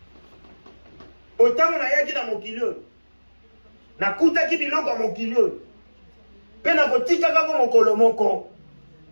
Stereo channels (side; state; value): both; inverted; correlation -1.00